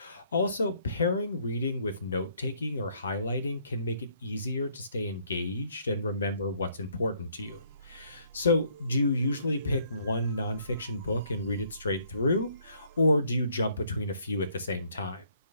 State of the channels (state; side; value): inverted; both; correlation -0.65